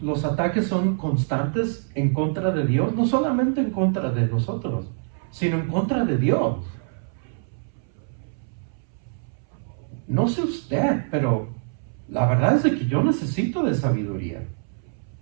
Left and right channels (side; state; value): left; silent; 62 dB below the other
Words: ataques son constantes en contra de Dios, no solamente en contra de nosotros, sino en contra de Dios. No sé usted, pero la verdad es que yo necesito de sabiduría.